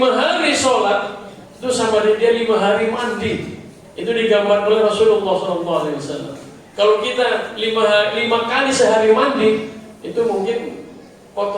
hari sholat, itu sama dia 5 hari mandi. Itu digambarkan oleh Rasulullah SAW. Kalau kita 5 kali sehari mandi, itu mungkin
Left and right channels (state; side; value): identical; both; correlation 1.00